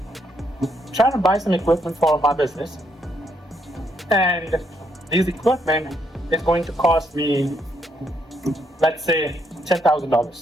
trying to buy some equipment for my business, and this equipment is going to cost me, let's say,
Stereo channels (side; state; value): both; normal; correlation 0.74